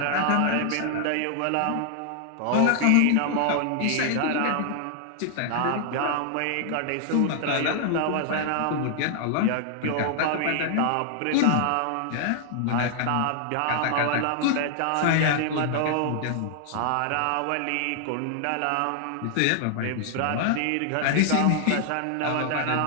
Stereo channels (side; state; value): both; different; correlation 0.00